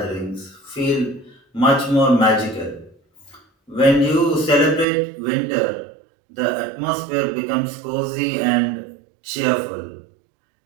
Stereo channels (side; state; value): left; drops out; at 4.9 s